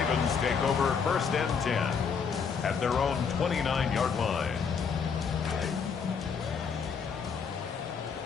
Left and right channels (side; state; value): right; quieter; 6.1 dB